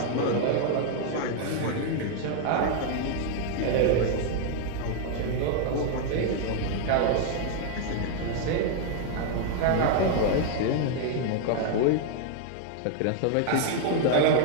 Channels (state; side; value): different; both; correlation 0.00